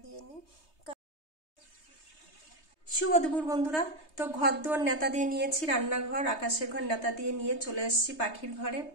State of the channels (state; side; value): late; right; 3.2 ms